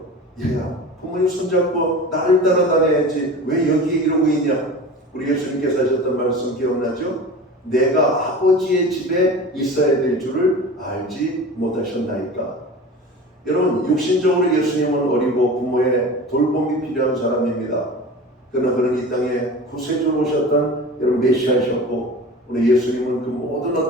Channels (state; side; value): normal; both; correlation 0.35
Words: 얘야, 부모님 손잡고 나를 따라다녀야지 왜 여기에 이러고 있냐? 우리 예수님께서 하셨던 말씀 기억나죠? 내가 아버지의 집에 있어야 될 줄을 알지 못하셨나이까. 여러분, 육신적으로 예수님은 어리고 부모의 돌봄이 필요한 사람입니다. 그러나 그는 이 땅에 구세주로 오셨던 여러분 메시아셨고, 오늘 예수님은 그 모든